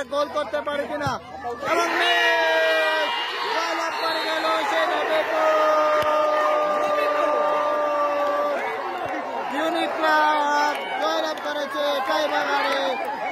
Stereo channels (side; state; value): both; identical; correlation 1.00